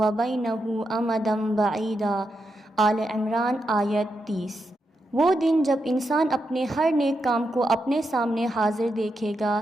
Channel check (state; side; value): normal; both; correlation 0.84